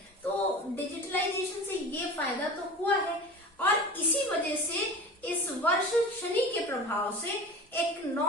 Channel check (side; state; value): both; normal; correlation 0.35